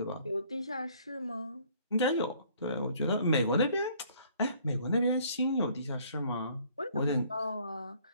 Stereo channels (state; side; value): inverted; both; correlation -0.60